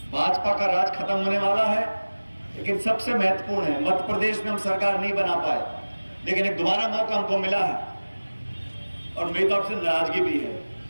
भाजपा का राज खत्म होने वाला है, लेकिन सबसे महत्वपूर्ण है मध्य प्रदेश में हम सरकार नहीं बना पाए, लेकिन एक दोबारा मौका हमको मिला है और मेरी तरफ से नाराजगी भी है।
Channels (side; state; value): both; inverted; correlation -1.00